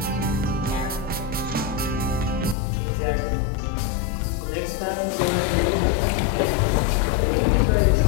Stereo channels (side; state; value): right; drops out; at 2.6 s